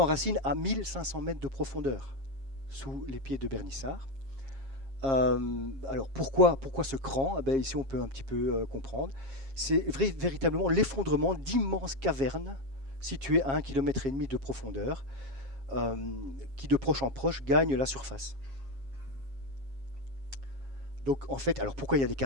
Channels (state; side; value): late; left; 7.4 ms